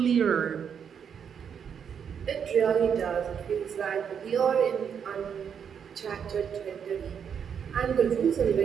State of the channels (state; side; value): quieter; left; 7.5 dB